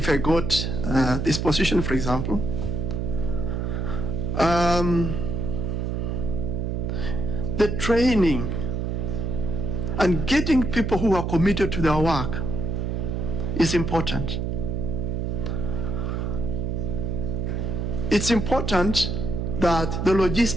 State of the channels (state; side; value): noise; right; hum, 1 dB below the sound